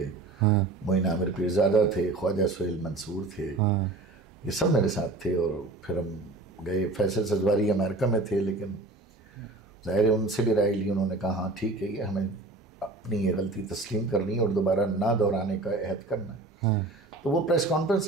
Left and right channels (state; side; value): quieter; left; 3.1 dB